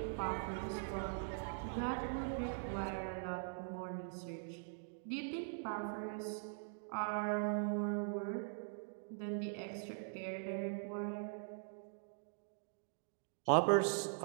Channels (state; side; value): silent; left; digital silence